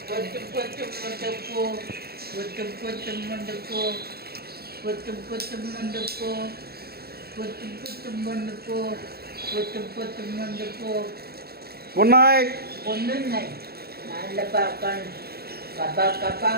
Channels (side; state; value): left; late; 0.46 ms